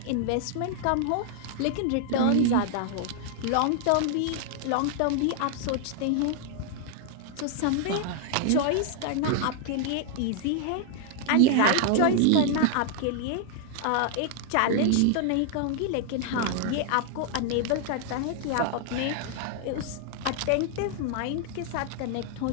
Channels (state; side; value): different; both; correlation 0.00